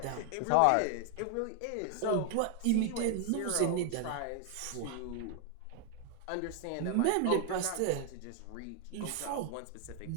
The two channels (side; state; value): both; different; correlation 0.00